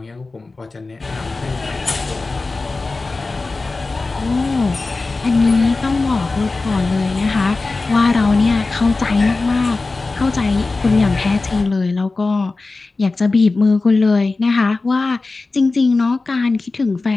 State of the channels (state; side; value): quieter; right; 3.6 dB